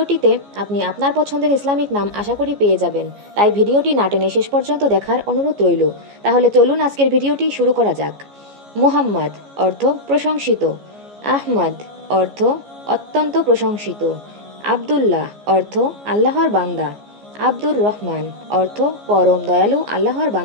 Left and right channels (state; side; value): late; left; 14 ms